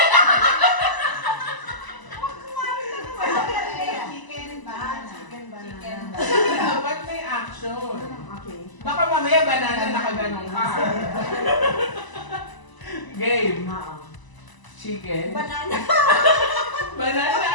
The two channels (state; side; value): late; right; 1.0 ms